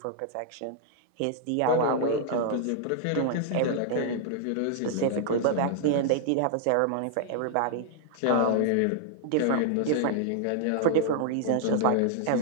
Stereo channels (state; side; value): different; both; correlation 0.00